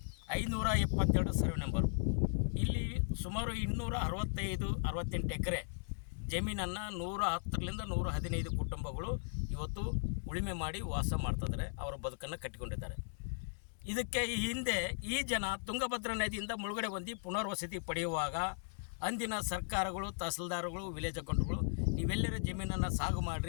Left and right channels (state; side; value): silent; right; digital silence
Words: 572 ಸರ್ವೆ ನಂಬರು. ಇಲ್ಲಿ ಸುಮಾರು 268 ಎಕರೆ ಜಮೀನನ್ನು 110ರಿಂದ 115 ಕುಟುಂಬಗಳು ಇವತ್ತು ಉಳುಮೆ ಮಾಡಿ ವಾಸ ಮಾಡ್ತಿದ್ದಾರೆ, ಅವರ ಬದುಕನ್ನು ಕಟ್ಟಿಕೊಂಡಿದ್ದಾರೆ. ಇದಕ್ಕೆ ಈ ಹಿಂದೆ ಈ ಜನ ತುಂಗಭದ್ರಾ ನದಿಯಿಂದ ಮುಳುಗಡೆ ಹೊಂದಿ ಪುನರ್ವಸತಿ ಪಡೆಯುವಾಗ ಅಂದಿನ ಸರ್ಕಾರಗಳು, ತಹಸೀಲ್ದಾರ್ಗಳು, ವಿಲೇಜ್ ಅಕೌಂಟ್ಗಳು ನೀವೆಲ್ಲರ ಜಮೀನನ್ನು ಸಾಗು